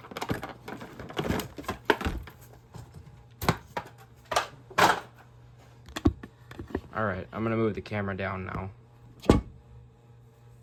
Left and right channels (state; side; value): identical; both; correlation 1.00